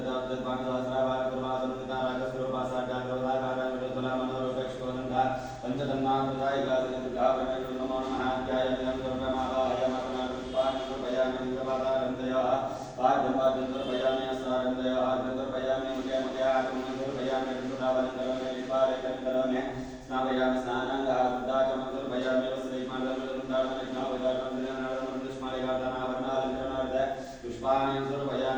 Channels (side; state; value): both; identical; correlation 1.00